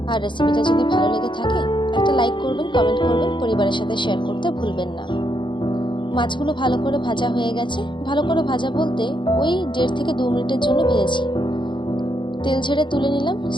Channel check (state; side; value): late; right; 0.23 ms